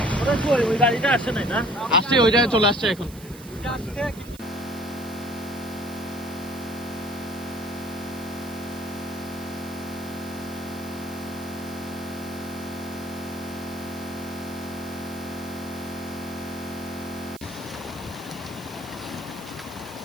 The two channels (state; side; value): noise; right; hiss, 18 dB below the sound